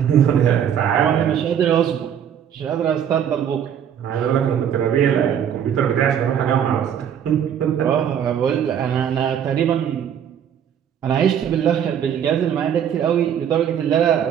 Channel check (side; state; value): left; quieter; 8.9 dB